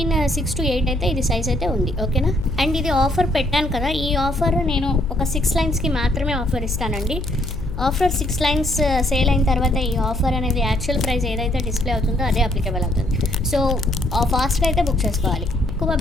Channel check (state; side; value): noise; left; hum, 7 dB below the sound